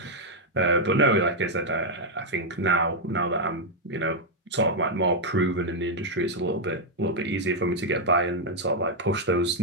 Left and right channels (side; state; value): both; normal; correlation -0.02